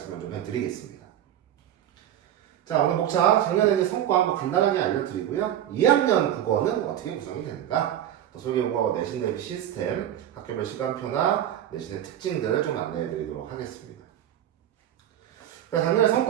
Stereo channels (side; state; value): left; quieter; 11.1 dB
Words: 좀 해드리겠습니다. 자, 오늘 목차 작년에 성과 한번 간단하게 알려드리고요. 2학년 국어는 어떻게 구성이 되는가, 또 솔개국어 내신 대비 시스템, 학교별 시간표나 내신의 특징들을 좀 안내해드리도록 하겠습니다. 작년에